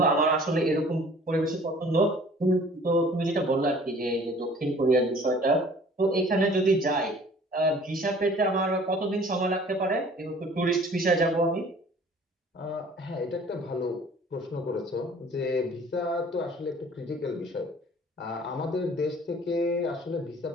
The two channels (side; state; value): both; normal; correlation 0.51